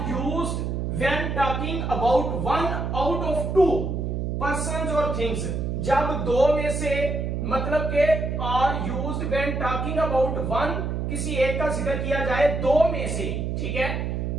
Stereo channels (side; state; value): right; noise; hum, 2 dB below the sound